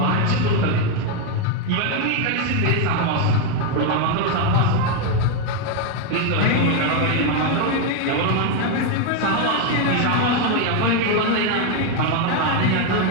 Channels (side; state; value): both; different; correlation 0.01